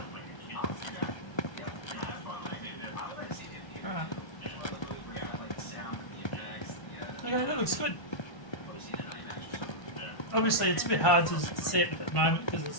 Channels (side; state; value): right; late; 1.2 ms